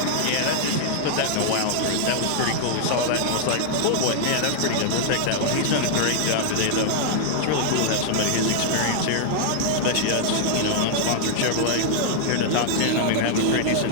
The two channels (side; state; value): both; different; correlation -0.01